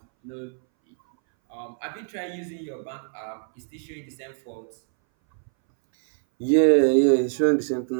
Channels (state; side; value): silent; left; 61 dB below the other